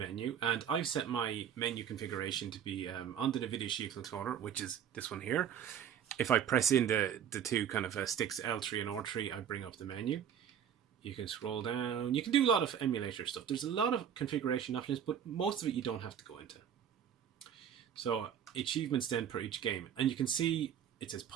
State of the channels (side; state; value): left; quieter; 8.8 dB